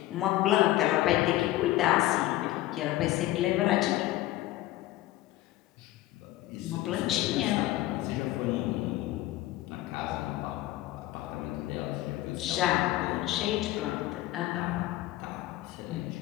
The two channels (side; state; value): right; quieter; 16.1 dB